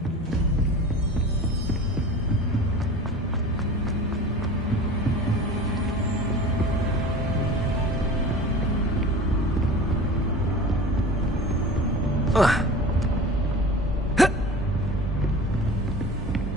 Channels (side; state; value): both; normal; correlation 0.37